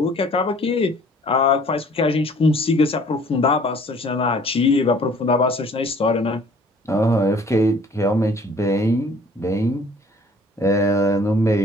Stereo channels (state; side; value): normal; both; correlation 0.54